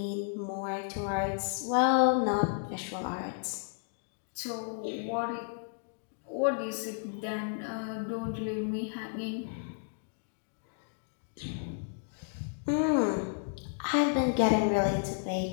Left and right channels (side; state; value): right; silent; digital silence